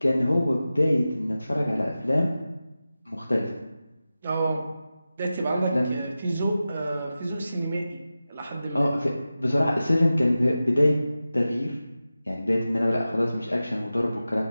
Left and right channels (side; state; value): both; inverted; correlation -0.94